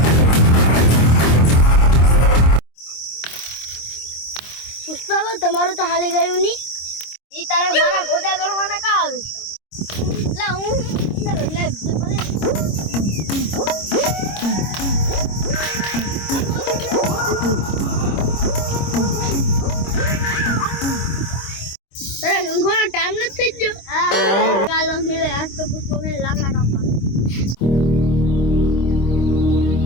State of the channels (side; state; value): right; late; 26 ms